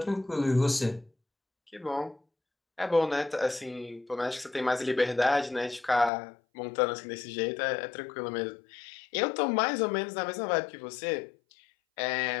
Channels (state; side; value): drops out; right; at 6.1 s